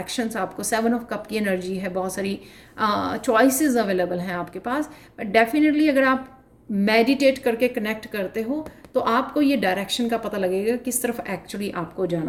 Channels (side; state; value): both; identical; correlation 1.00